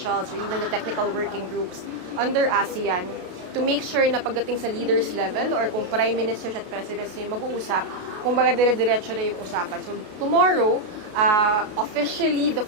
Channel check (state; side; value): late; left; 33 ms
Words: or even the technical working groups under ASEAN, to make sure na pagdating sa leaders level or kung prime ministers at presidents na yung mag-uusap, kumbaga dire-diretso na yung usapan. So tomorrow, officially, the